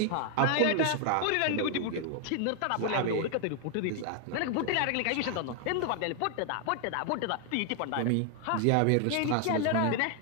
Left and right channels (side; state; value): both; different; correlation 0.00